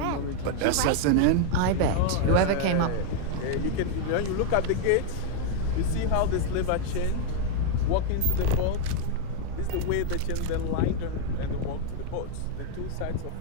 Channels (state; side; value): different; both; correlation 0.00